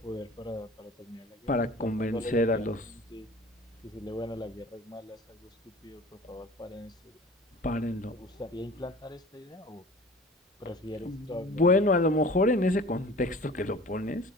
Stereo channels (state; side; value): normal; both; correlation 0.43